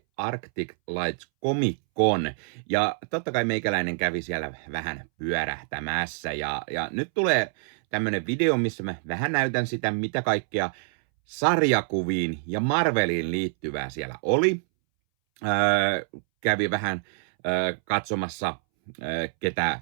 Arctic Lights Comic Con. Ja totta kai meikäläinen kävi siellä vähän pyörähtämässä. Ja nyt tulee tämmönen video, missä mä vähän näytän sitä, mitä kaikkea sarjakuviin ja Marveliin liittyvää siellä oli. Kävi vähän katsomassa, ketä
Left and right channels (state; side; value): silent; left; 61 dB below the other